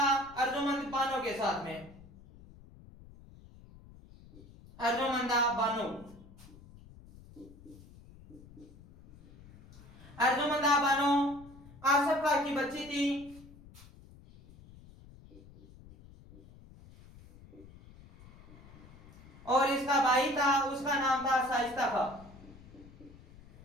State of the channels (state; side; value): noise; left; rumble, 21 dB below the sound